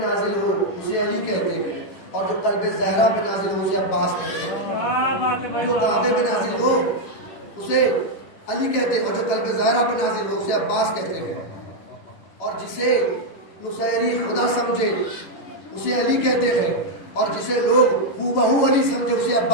علی کہتے ہیں، اور جو قلب زہرا پہ نازل ہو اسے عباس کہتے ہیں. جو کعبے پہ نازل ہو اسے علی کہتے ہیں، اور جو قلب زہرا پہ نازل ہو اسے عباس کہتے ہیں. اور جسے نصیری خدا سمجھے اسے علی کہتے ہیں، اور جسے لوگ ہو بہو علی سمجھے اسے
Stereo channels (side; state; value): right; late; 10 ms